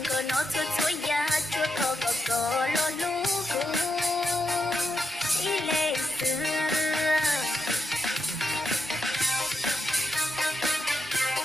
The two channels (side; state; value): both; normal; correlation 0.85